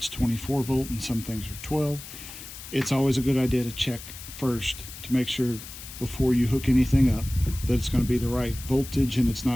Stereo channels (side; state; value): left; noise; hiss, 13 dB below the sound